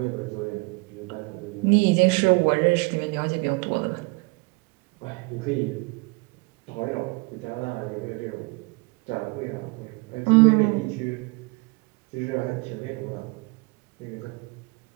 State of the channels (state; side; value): quieter; left; 28.0 dB